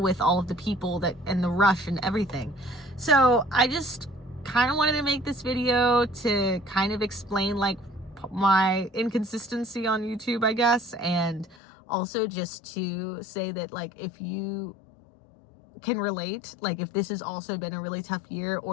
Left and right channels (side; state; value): right; drops out; at 11.6 s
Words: all of the people and the rush and everything. So I just kind of wanted to make this video to kind of explain like my inconsistency on YouTube, I guess. And also just to say that like, if you can relate, like if this has also been a really tough year